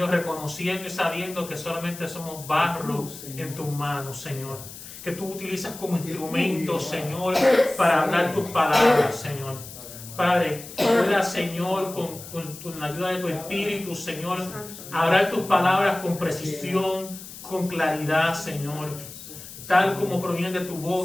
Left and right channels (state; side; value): noise; left; hiss, 14 dB below the sound